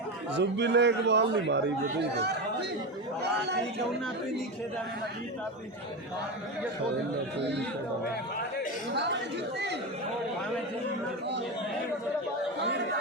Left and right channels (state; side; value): normal; both; correlation 0.18